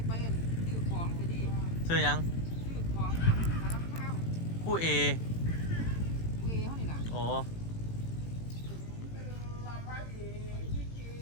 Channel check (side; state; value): right; late; 18 ms